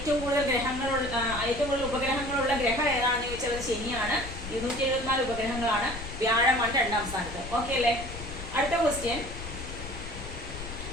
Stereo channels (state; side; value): noise; left; rumble, 10 dB below the sound